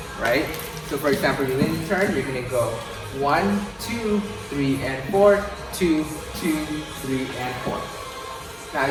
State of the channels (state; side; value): identical; both; correlation 1.00